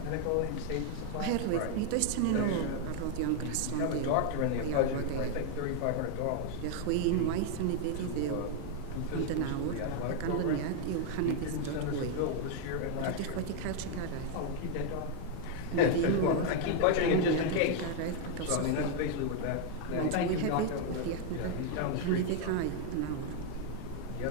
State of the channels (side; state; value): both; different; correlation 0.00